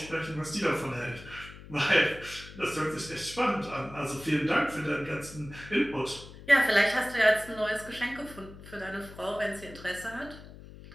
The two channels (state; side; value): noise; left; hum, 16 dB below the sound